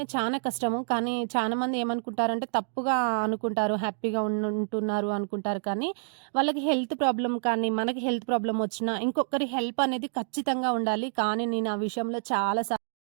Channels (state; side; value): silent; left; digital silence